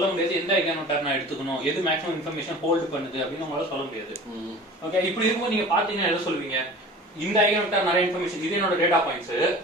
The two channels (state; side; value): normal; both; correlation 0.40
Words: முடியாது எந்த ஐகன் வெக்டார் நான் எடுத்துக்கணும், எது மேக்ஸிமம் இன்ஃபர்மேஷன் ஹோல்ட் பண்ணுது அப்படின்னு உங்களால சொல்ல முடியாது. ஓகே இப்படி இருக்கும்போது நீங்க பாத்தீங்கன்னா என்ன சொல்லுவீங்க, இந்த ஐகன் வெக்டார் நிறைய இன்ஃபர்மேஷன், இது என்னோட டேட்டா பாயிண்ட்ஸ்,